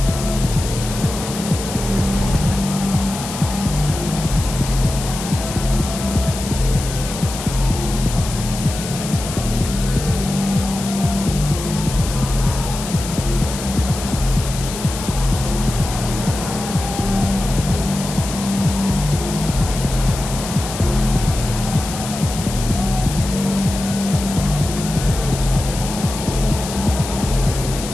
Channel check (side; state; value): left; noise; hiss, 9 dB below the sound